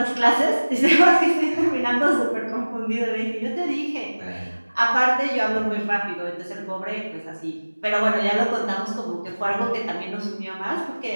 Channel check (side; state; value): both; inverted; correlation -1.00